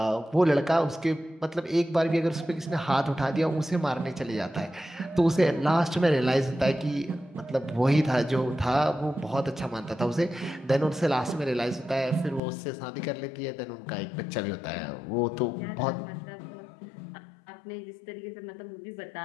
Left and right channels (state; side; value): drops out; right; at 12.4 s